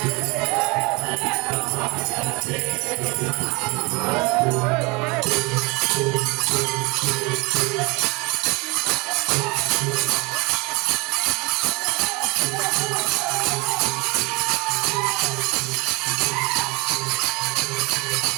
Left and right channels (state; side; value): quieter; left; 26.5 dB